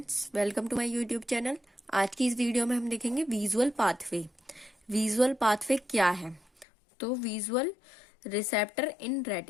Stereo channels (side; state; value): right; drops out; at 6.7 s